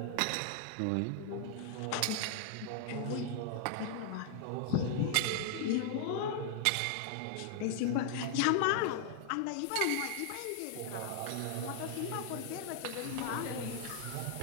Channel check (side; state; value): both; different; correlation 0.00